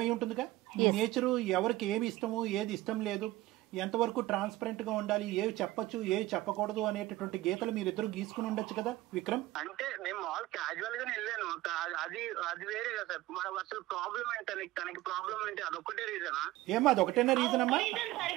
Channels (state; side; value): quieter; left; 17.3 dB